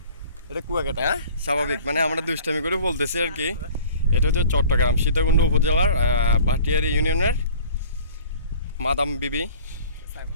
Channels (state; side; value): inverted; both; correlation -0.47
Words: এটা কুয়াকাটা, হ্যাঁ স্বাভাবিক, মানে আমরা দুষ্টামি করে বলতেছি আর কি। এটা হচ্ছে চট্টগ্রাম সীতাকুণ্ড উপজেলার ভাটিয়ারি ইউনিয়নের মাদাম বিবি